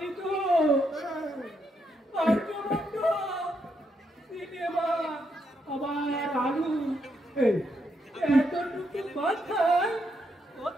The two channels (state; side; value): normal; both; correlation 0.79